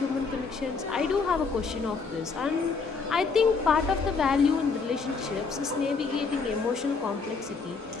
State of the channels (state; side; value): quieter; right; 4.8 dB